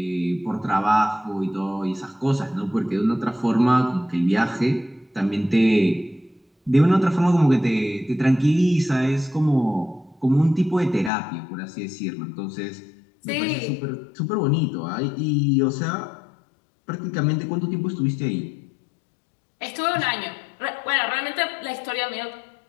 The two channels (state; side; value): drops out; right; at 11.1 s